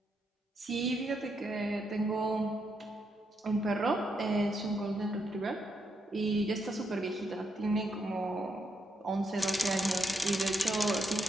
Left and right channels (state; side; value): normal; both; correlation 0.79